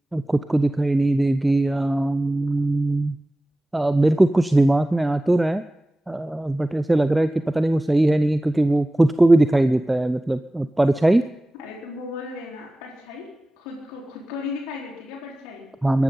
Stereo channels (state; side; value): normal; both; correlation 0.97